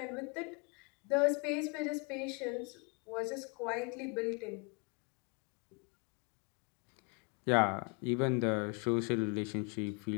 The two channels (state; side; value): quieter; right; 33.7 dB